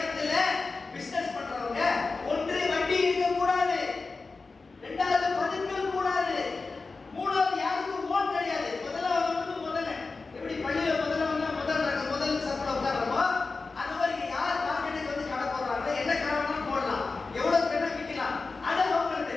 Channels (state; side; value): quieter; right; 4.0 dB